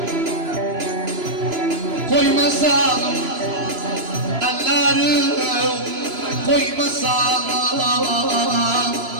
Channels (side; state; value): left; late; 2.9 ms